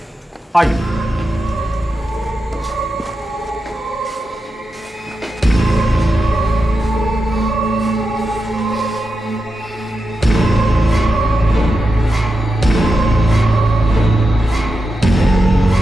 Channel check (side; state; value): both; normal; correlation 0.89